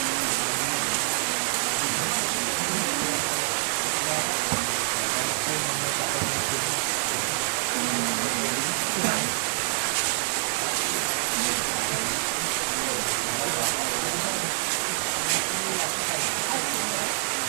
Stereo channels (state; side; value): silent; left; 61 dB below the other